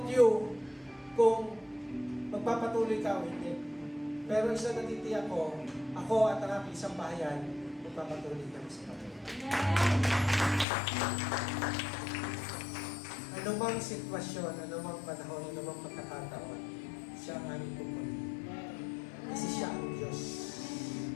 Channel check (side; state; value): right; drops out; at 10.7 s